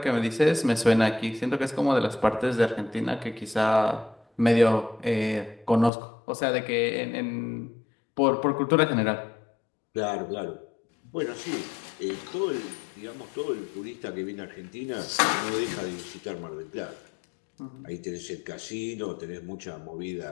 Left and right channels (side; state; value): right; drops out; at 5.9 s